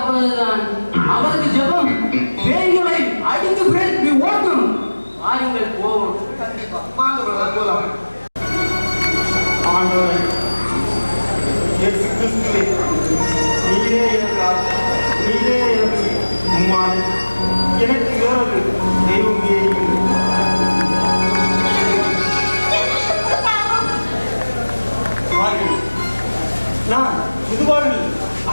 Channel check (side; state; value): both; inverted; correlation -1.00